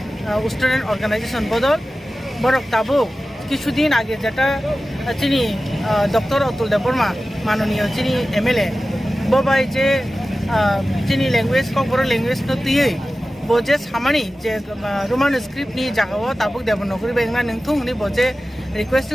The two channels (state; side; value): normal; both; correlation 0.95